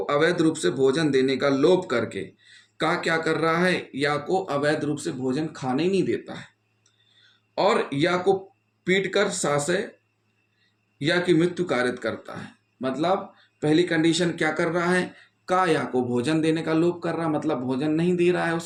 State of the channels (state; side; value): identical; both; correlation 1.00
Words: अवैध रूप से भोजन देने का लोप करके, का क्या कर रहा है? या को अवैध रूप से भोजन खाने नहीं देता है, और या को पीट कर सासे या की मृत्यु कारित करता है। मतलब पहली कंडीशन क्या कर रहा है? का या को भोजन देने का लोप कर रहा है, मतलब भोजन नहीं दे रहा है